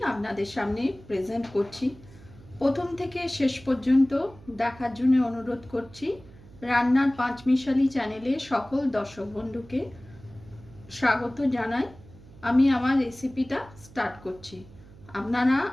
আপনাদের সামনে প্রেজেন্ট করছি। প্রথম থেকে শেষ পর্যন্ত দেখার জন্য অনুরোধ করছি। রান্নার পাঁচমিশালি চ্যানেলে সকল দর্শক বন্ধুকে স্বাগত জানাই। আমি আমার রেসিপিটা স্টার্ট করছি, আপনারা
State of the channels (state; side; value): noise; right; hum, 21 dB below the sound